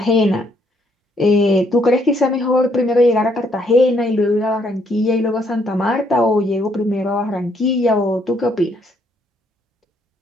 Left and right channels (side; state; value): both; normal; correlation 0.70